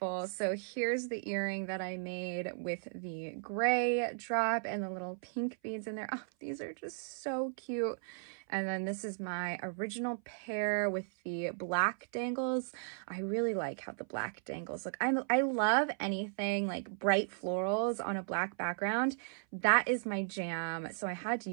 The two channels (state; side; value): silent; left; 54 dB below the other